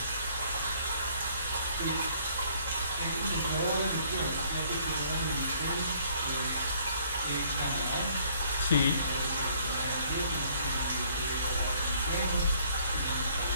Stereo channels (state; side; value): inverted; both; correlation -0.61